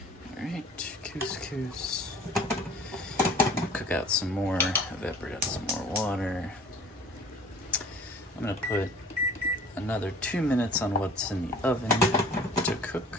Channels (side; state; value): both; normal; correlation 0.46